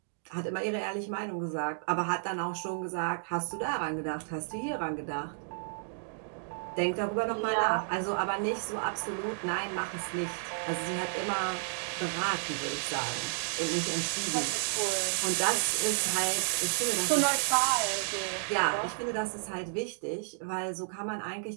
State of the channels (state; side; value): silent; left; digital silence